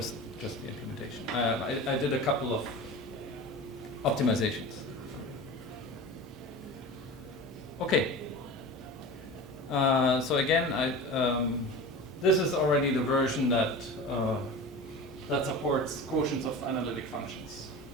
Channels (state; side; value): normal; both; correlation 0.33